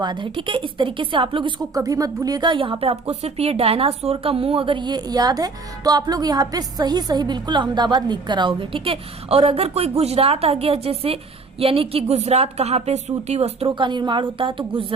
है, ठीक है। इस तरीके से आप लोग इसको कभी मत भूलिएगा। यहाँ पे आपको सिर्फ ये डायनासोर का मुंह अगर ये याद है तो आप लोग यहाँ पे सही सही बिल्कुल अहमदाबाद लिख कर आओगे, ठीक है। और अगर कोई गुजरात आ गया, जैसे यानी कि गुजरात कहाँ पे सूती वस्त्रों का निर्माण होता है, तो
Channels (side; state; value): left; quieter; 4.0 dB